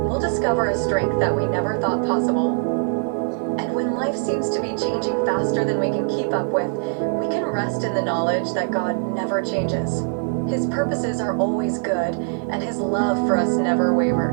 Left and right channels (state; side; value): silent; left; 64 dB below the other